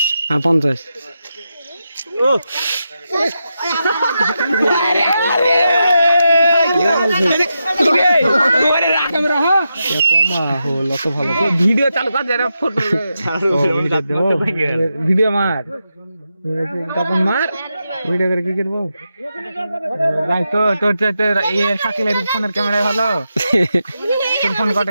আর 50 ও ভিডিও চালু কর যারা ফটো ভিডিও মার তখন মার ভিডিও করে কি করবো ভাই তো তোর এই শাকিলের ফোনের ক্যামেরা ভালো তোর ফোন কত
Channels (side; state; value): both; inverted; correlation -0.87